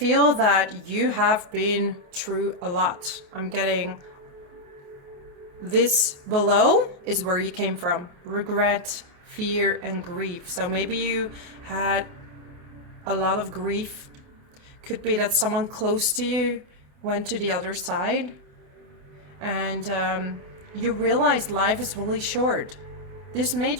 that you have been through a lot. I'm getting this below is where you came from. Regret, fear, and grief. So maybe you had a lot of grief. Could be that someone close to you went to the other side. And you realized life is really short. This made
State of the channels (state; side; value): late; left; 28 ms